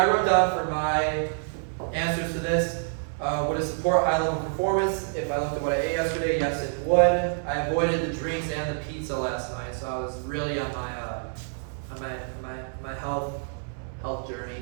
wrote down for my answers to this, would it support high level performance? If I looked at what I ate yesterday, yes it would. I avoided the drinks and the pizza last night, so I was really on my health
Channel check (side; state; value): left; silent; 60 dB below the other